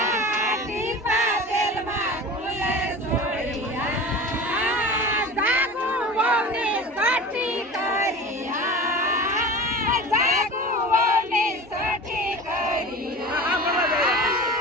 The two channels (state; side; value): normal; both; correlation 0.34